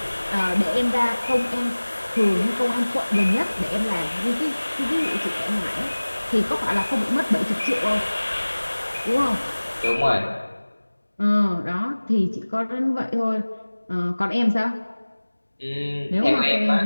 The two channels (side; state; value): both; inverted; correlation -1.00